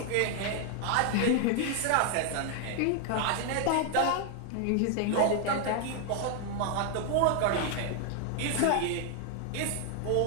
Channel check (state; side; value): different; both; correlation 0.00